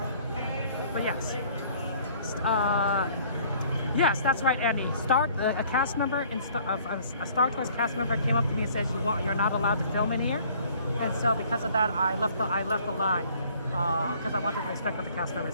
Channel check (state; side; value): inverted; both; correlation -0.56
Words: But yes. Yes, that's right, Andy. A cast member, a Star Tours cast member came up to me and said, you're not allowed to film in here. And so because of that, I left the line. because I wanted to respect what the cast member